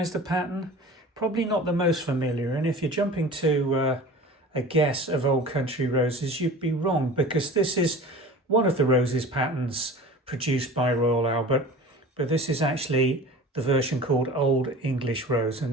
the pattern? Probably not the most familiar, and if you're jumping to a guess of Old Country Roses, you'd be wrong, because this is one of the roses patterns produced by Royal Albert, but this is actually the version called Old English Rose.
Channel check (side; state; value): both; normal; correlation 0.39